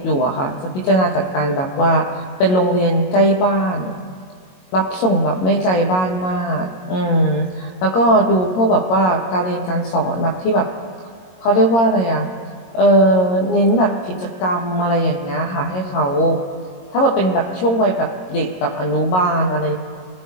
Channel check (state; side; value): late; right; 22 ms